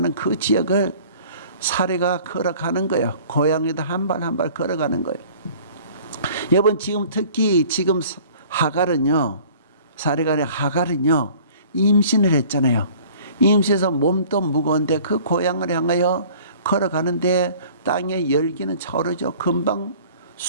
그 지역을 사례가 걸어가는 거예요. 고양이도 한 발 한 발 걸어가는 거예요. 여러분, 지금 특히 지금 하갈은요, 사례가 아니라 하갈은요, 임신을 했잖아요. 임신해서 몸도 무거운데 그 고향을 향하여 걸어가는데 땅의 열기는 차오르죠. 금방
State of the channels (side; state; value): both; inverted; correlation -0.49